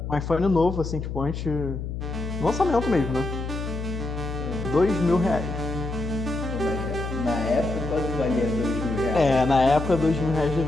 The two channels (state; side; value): noise; left; hum, 5 dB below the sound